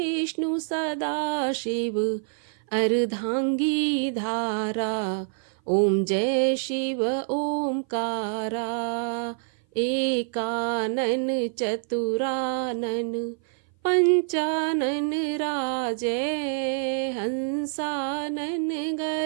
सदा शिव अर्धांगी धारा। ओम जय शिव ओमकारा, एकानन चतुरानन पंचानन राजै, हंसानन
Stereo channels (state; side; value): silent; left; 57 dB below the other